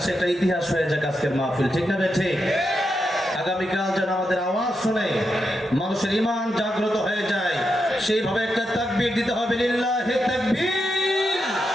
একটা ইতিহাস হয়ে যাক আজকের মাহফিল, ঠিক না ঠিক? আগামীকাল যেন আমাদের আওয়াজ শুনে মানুষের ঈমান জাগ্রত হয়ে যায়, সেইভাবে একটা তাকবীর দিতে হবে। লিল্লাহি তাকবীর,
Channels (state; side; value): normal; both; correlation 0.85